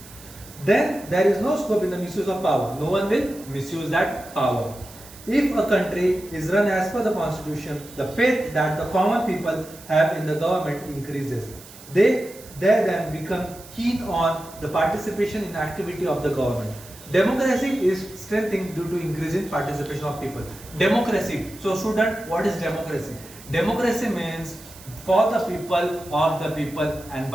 Then there is no scope in the misuse of power. No one will misuse that power. If a country is run as per the constitution, the faith that the common people have in the government increases. They then become keen on the participation in activity of the government. Democracy is strengthening due to increasing participation of people. Democracy. So student, what is democracy? Democracy means for the people, of the people and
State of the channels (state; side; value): noise; right; hiss, 19 dB below the sound